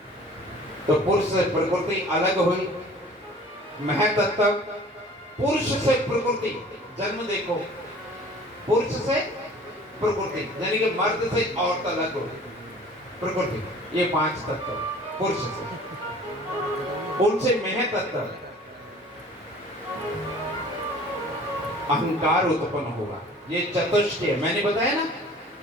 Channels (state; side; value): normal; both; correlation 0.48